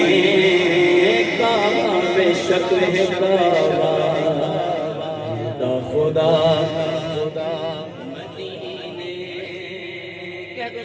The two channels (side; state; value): both; identical; correlation 1.00